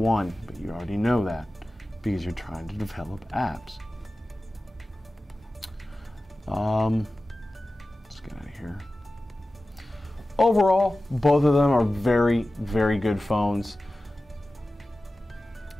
but you already know that because you're trying to develop apps. Let's get out of here. Overall, both of them are very, very good phones.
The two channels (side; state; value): both; normal; correlation 0.95